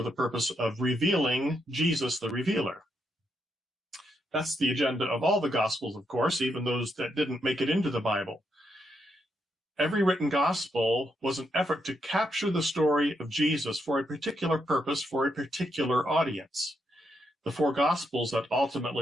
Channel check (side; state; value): both; normal; correlation 0.79